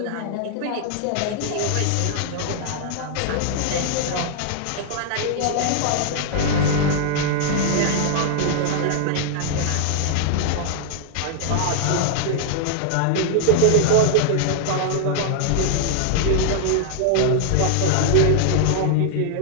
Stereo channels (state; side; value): different; both; correlation -0.01